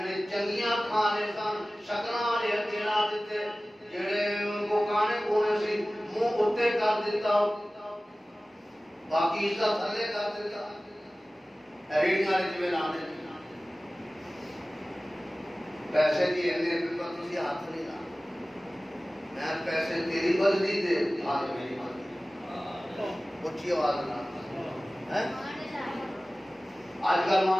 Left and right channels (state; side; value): normal; both; correlation 0.97